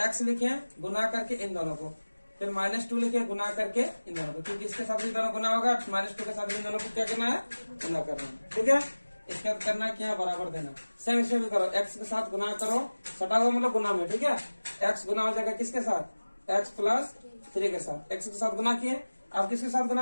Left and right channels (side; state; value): both; inverted; correlation -1.00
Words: x लिखे गुना करके इन दोनों को, फिर -2 लिखे गुना करके इन दोनों को, क्योंकि इसके साथ इन दोनों गुना होगा, -2 के साथ इन दोनों को क्या करना है, गुना करना है, ठीक है। इसके बाद करना क्या, बराबर देना। सेम इसे भी करो, x के साथ गुना करो, सटा हुआ मतलब गुना में, ठीक है। x गुना हो जाएगा किसके साथ, x प्लस 3 के साथ, x के साथ गुना किए, अब किसके साथ